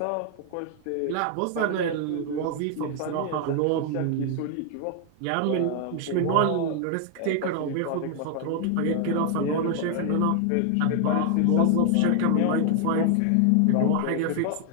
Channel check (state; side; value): different; both; correlation 0.00